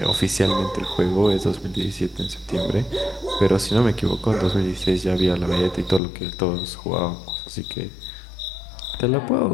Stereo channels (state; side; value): drops out; right; at 6.0 s